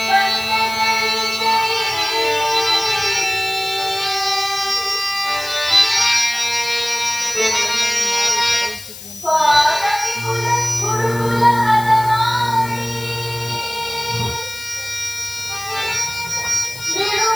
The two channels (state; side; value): noise; left; hiss, 14 dB below the sound